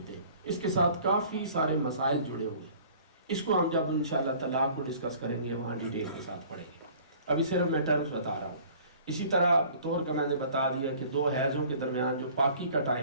ہیں۔ اس کے ساتھ کافی سارے مسائل جڑے ہوئے، اس کو ہم جب انشاءاللہ طلاق کو ڈسکس کریں گے وہاں ڈیٹیل کے ساتھ پڑھیں گے، ابھی صرف میں ٹرمز بتا رہا ہوں۔ اسی طرح طہر کا میں نے بتا دیا کہ دو حیضوں کے درمیان جو پاکی کا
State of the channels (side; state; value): both; inverted; correlation -0.50